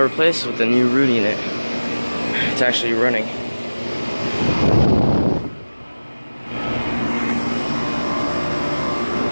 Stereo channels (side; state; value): both; inverted; correlation -1.00